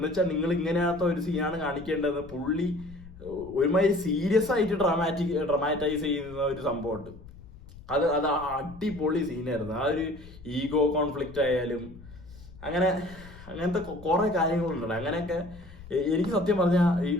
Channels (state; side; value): noise; left; rumble, 18 dB below the sound